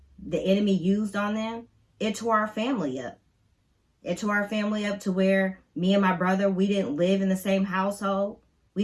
the enemy used on them, it tore our family up. It tore our family up to where me and my brother, we didn't live in the same household. We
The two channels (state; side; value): identical; both; correlation 1.00